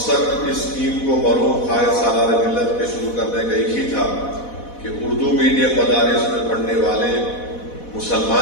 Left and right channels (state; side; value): late; right; 4.1 ms